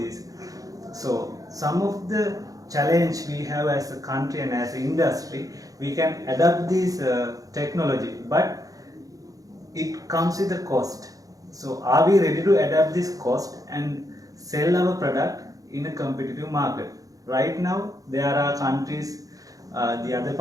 So some of the challenge we have as a country and as an industry, we can adapt this technology, but it comes with a cost. So are we ready to adapt this cost and sell our product in a competitive market? Right now there are countries, the other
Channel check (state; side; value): late; left; 0.17 ms